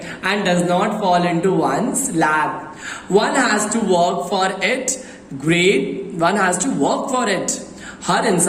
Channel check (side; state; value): both; identical; correlation 1.00